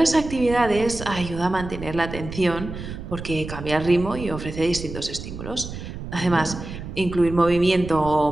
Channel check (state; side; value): noise; right; rumble, 10 dB below the sound